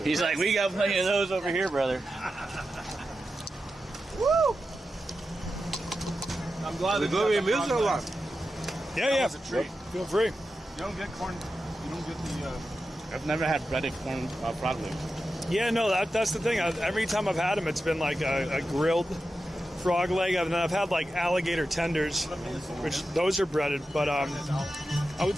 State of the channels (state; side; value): normal; both; correlation 0.90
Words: He's like, we got plenty of those over here, brother. Woo! I'm glad We go in meals or what? Yeah. Feel free. You don't get corn. You don't get the. I've never had breaded corn frog legs. Yeah, no, that's the thing. Every time I've had them, it's been like a grilled frog leg, and then I've had like alligator tenders, which those are breaded. But I would